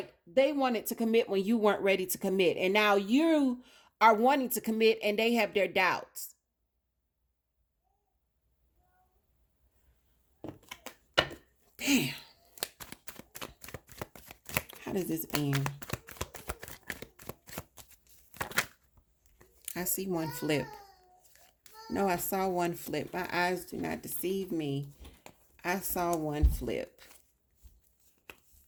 they wanted to commit when you weren't ready to commit. And now you are wanting to commit and they have their doubts. Damn. How does this end? I see one flip. No, I saw one flip. My eyes do not deceive me. I saw one flip.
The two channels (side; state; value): both; identical; correlation 1.00